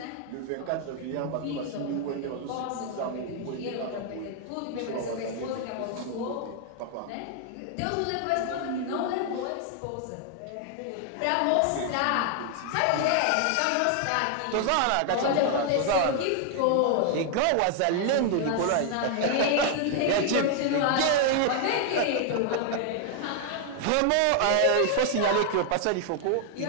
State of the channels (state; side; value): different; both; correlation 0.00